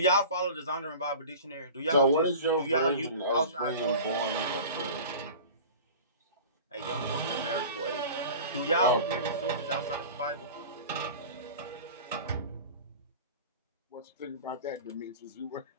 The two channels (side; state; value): both; inverted; correlation -0.37